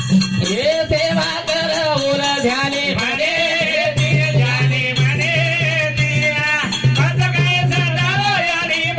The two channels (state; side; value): identical; both; correlation 1.00